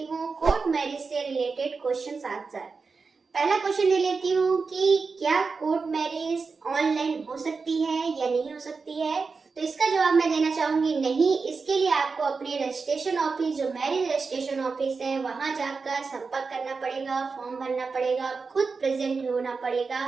हूँ court marriage से रिलेटेड क्वेश्चन आंसर। पहला क्वेश्चन ले लेती हूँ कि क्या कोर्ट मैरिज ऑनलाइन हो सकती है या नहीं हो सकती है। तो इसका जवाब मैं देना चाहूंगी नहीं। इसके लिए आपको अपने रजिस्ट्रेशन ऑफिस, जो मैरिज रजिस्ट्रेशन ऑफिस है, वहां जाकर संपर्क करना पड़ेगा, फॉर्म भरना पड़ेगा, खुद प्रेजेंट होना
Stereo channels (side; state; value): left; quieter; 4.6 dB